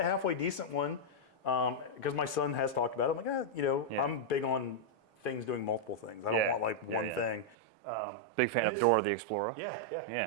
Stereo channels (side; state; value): left; drops out; at 7.6 s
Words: halfway decent one. Because my son has talked about it. I'm like, I'm big on things doing multiple things. I don't want like one thing. Big fan of Dora the Explorer.